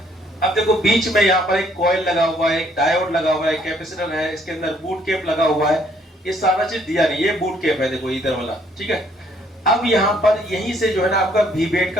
अब देखो बीच में यहाँ पर एक कॉइल लगा हुआ है, एक डायोड लगा हुआ है, कैपेसिटर है, इसके अंदर बूट कैप लगा हुआ है। ये सारा चीज दिया नहीं, ये बूट कैप है, देखो इधर वाला, ठीक है। अब यहाँ पर यहीं से जो है ना आपका वी बेड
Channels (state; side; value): normal; both; correlation 0.65